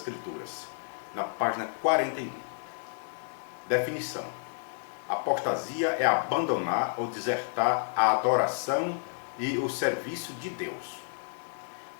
na página 41. Definição: apostasia é abandonar ou desertar a adoração e o serviço de Deus.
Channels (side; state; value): right; silent; digital silence